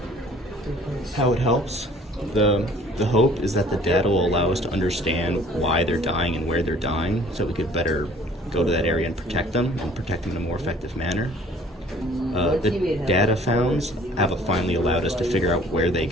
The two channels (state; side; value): normal; both; correlation 0.53